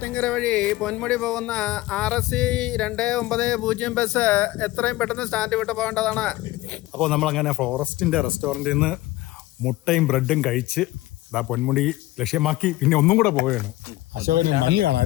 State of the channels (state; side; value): quieter; right; 17.7 dB